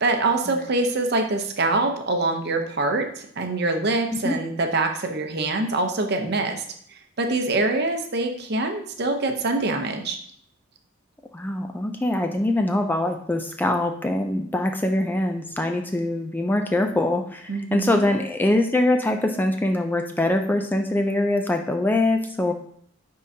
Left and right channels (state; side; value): normal; both; correlation 0.46